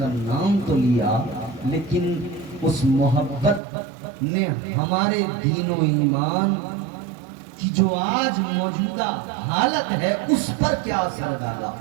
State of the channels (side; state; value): left; drops out; at 3.6 s